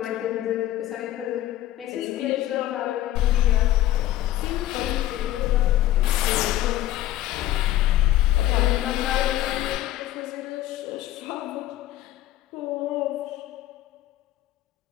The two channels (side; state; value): right; quieter; 14.1 dB